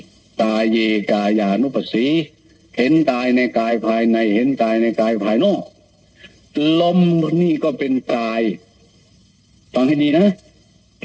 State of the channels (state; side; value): identical; both; correlation 1.00